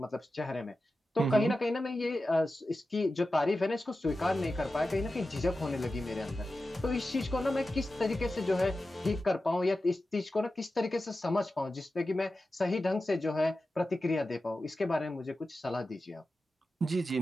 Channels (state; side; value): normal; both; correlation 0.93